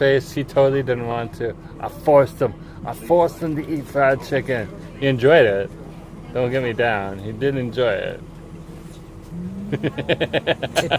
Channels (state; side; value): identical; both; correlation 1.00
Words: He totally didn't want to. I forced him. I forced him to eat fried chicken. He enjoyed it. Don't get me down. He did enjoy it.